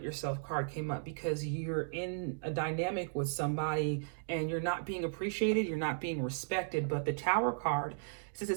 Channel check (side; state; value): left; silent; digital silence